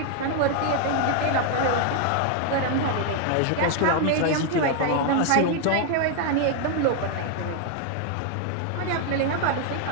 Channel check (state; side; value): different; both; correlation 0.00